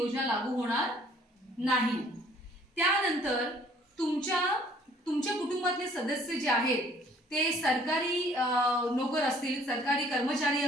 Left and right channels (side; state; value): both; normal; correlation 0.57